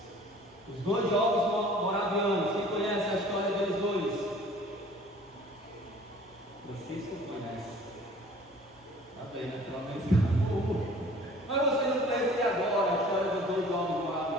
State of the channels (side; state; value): both; normal; correlation 0.50